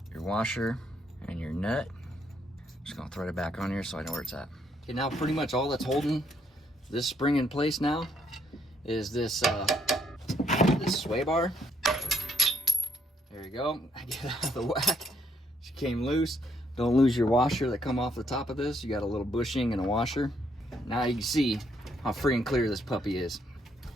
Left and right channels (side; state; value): both; normal; correlation 0.72